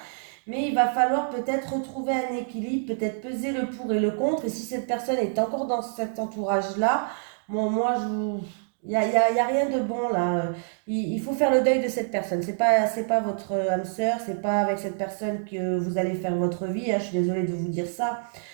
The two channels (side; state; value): left; silent; digital silence